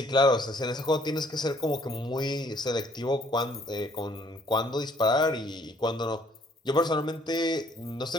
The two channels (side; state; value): both; normal; correlation 0.62